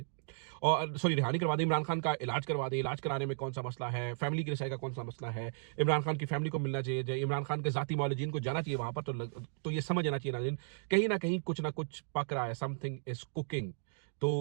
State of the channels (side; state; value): left; silent; digital silence